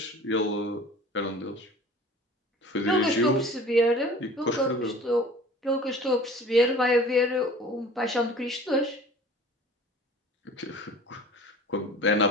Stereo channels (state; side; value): normal; both; correlation 0.44